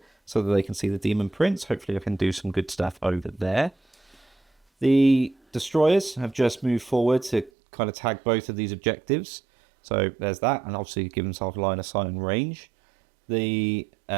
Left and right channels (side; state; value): left; drops out; at 7.5 s